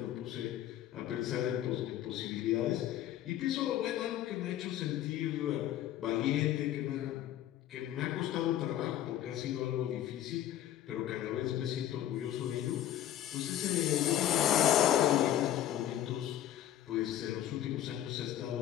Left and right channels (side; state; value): right; quieter; 12.1 dB